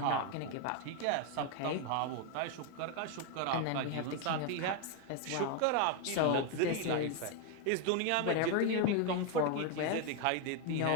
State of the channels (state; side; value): different; both; correlation 0.01